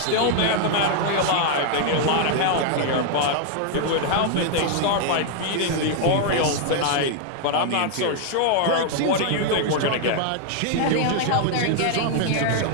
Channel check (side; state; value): both; different; correlation 0.00